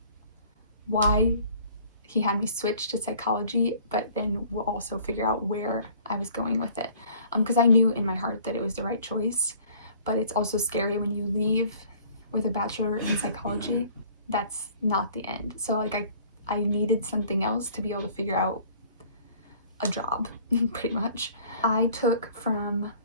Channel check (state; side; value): inverted; both; correlation -0.52